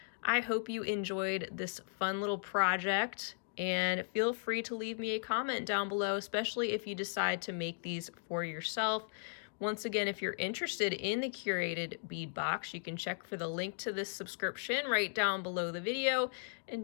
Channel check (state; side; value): silent; right; digital silence